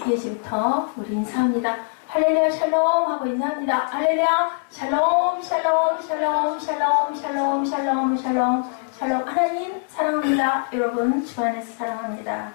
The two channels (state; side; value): silent; right; 64 dB below the other